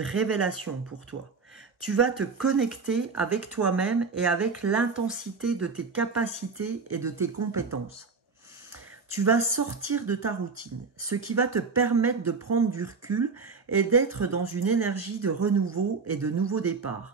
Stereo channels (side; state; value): left; quieter; 4.8 dB